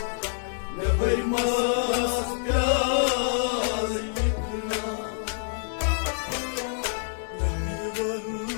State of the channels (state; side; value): silent; right; 60 dB below the other